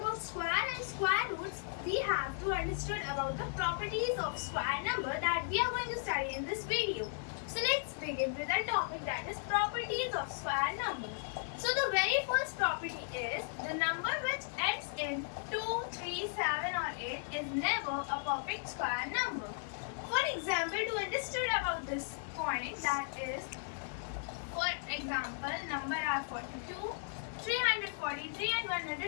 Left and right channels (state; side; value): silent; right; digital silence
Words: square and square roots, we have to understand about the properties of square number that we are going to study in this video. So let's begin with the topic, that is properties of square number. So the very first property is the number which ends in 2, 3, 7 or 8 is never a perfect square number. For example, to understand about this point, that is, for example, number are 42, 343 and